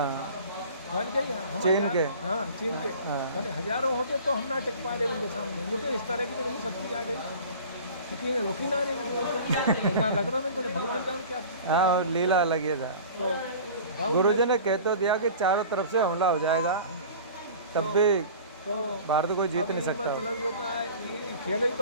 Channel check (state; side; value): inverted; both; correlation -0.41